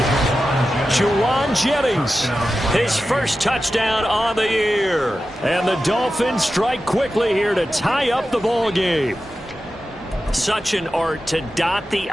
Juwan Jennings, his first touchdown on the year. And the Dolphins strike quickly here to tie up the ball game. Such an art to dot the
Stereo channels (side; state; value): both; normal; correlation 0.92